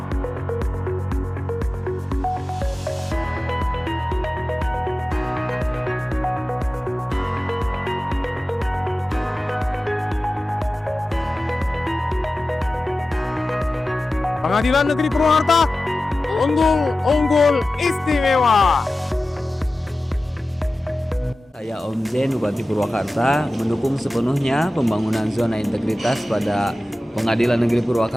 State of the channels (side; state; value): both; normal; correlation 0.95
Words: Pengadilan Negeri Purwakarta, unggul istimewa. Saya Om Zen, Bupati Purwakarta, mendukung sepenuhnya pembangunan zona integritas pada Pengadilan Negeri